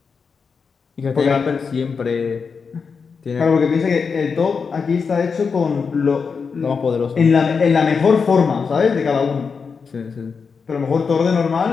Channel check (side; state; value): right; quieter; 5.5 dB